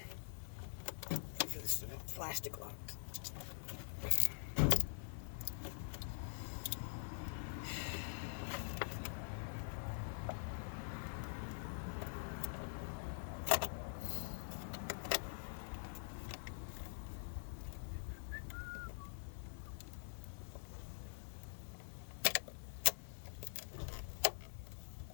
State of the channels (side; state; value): right; silent; digital silence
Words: For this plastic lock.